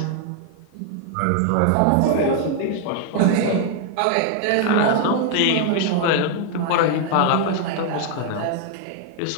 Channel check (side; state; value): both; different; correlation 0.00